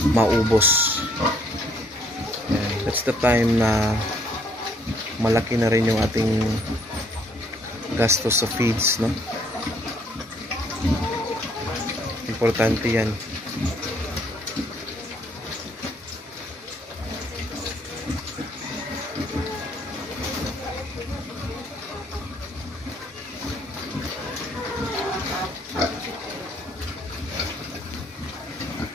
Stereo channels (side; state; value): both; normal; correlation 0.65